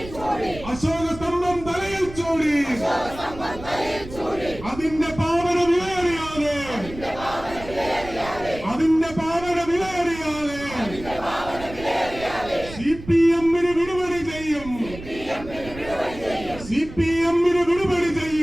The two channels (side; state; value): right; noise; rumble, 14 dB below the sound